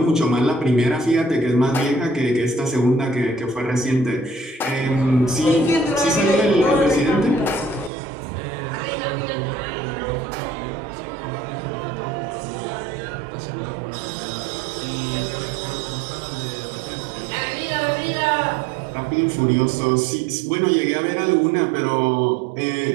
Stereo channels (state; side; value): drops out; left; at 7.9 s